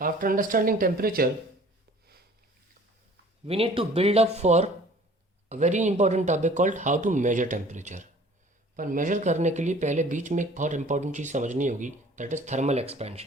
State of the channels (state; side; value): normal; both; correlation 0.50